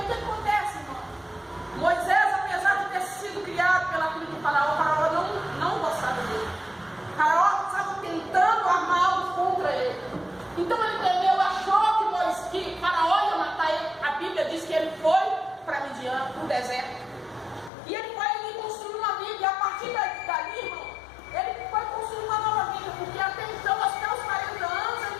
acontece, irmão? Moisés, apesar de ter sido criado pela filha de Faraó, Faraó não gostava dele. Faraó estava tentando armar algo contra ele. Então ele temeu, achou que Faraó ia matar ele. A Bíblia diz que ele foi para Midian, para o deserto. E ele foi ali construir uma vida. E a partir dali, irmão, ele foi construir uma nova vida. Porque até então, até os 40 anos,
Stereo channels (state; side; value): drops out; right; at 17.7 s